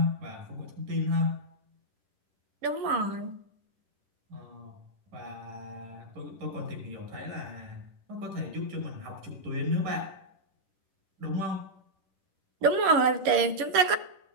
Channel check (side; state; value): left; late; 10 ms